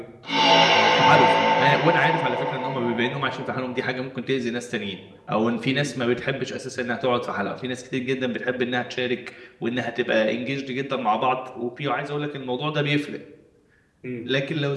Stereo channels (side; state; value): both; identical; correlation 1.00